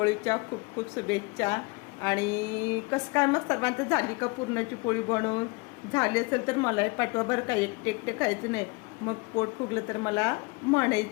खूप खूप शुभेच्छा. आणि कसं काय मग सर्वांचं झाली का पुरणाची पोळी बनवून? झाली असेल तर मलाही पाठवा बरं का. एकटे एकटे खायचं नाही, मग पोट फुगलं तर मला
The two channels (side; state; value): right; quieter; 27.0 dB